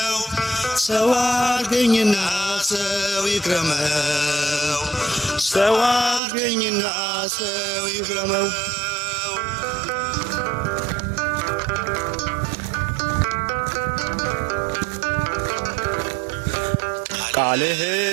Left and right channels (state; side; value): drops out; left; at 6.2 s